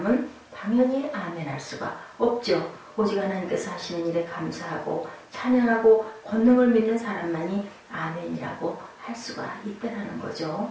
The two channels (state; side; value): identical; both; correlation 1.00